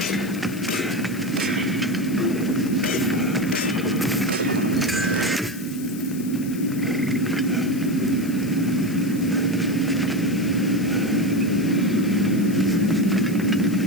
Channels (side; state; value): left; noise; hiss, 16 dB below the sound